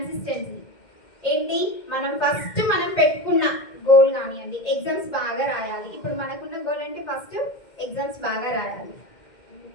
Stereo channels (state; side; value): late; right; 2.1 ms